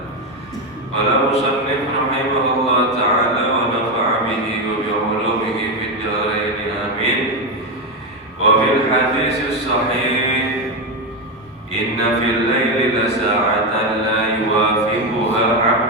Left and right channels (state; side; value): normal; both; correlation 0.10